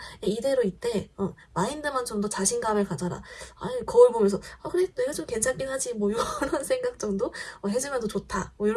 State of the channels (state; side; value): identical; both; correlation 1.00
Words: 이대로 이때, 마인드만 좀 더 자신감을 가져라. 아니, 거울 보면서, 그래, 내가 좀 괜찮긴 하지. 뭐, 이런 생각 정도? 해주면 더 좋다. 뭐,